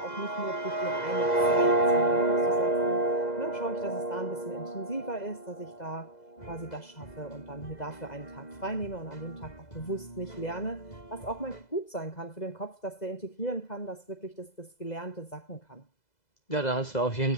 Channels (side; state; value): right; late; 2.0 ms